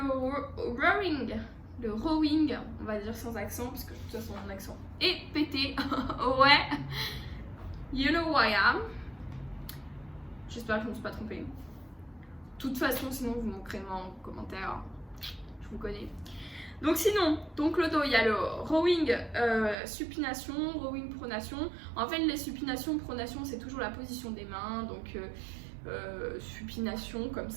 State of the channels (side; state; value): left; drops out; at 19.8 s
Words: rowing, on va dire sans accent parce que de toute façon mon accent est pété. Ouais, you know who I am. J'espère que je ne me suis pas trompée. De toute façon, sinon vous m'écrivez en commentaire, je vous connais. Donc sinon, le dos, il y a le rowing supination, rowing pronation. En fait, les supinations, pronation, c'est toujours la position des mains. Donc supination comme